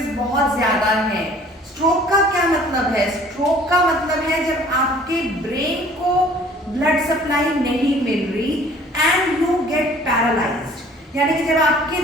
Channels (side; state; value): both; normal; correlation 0.52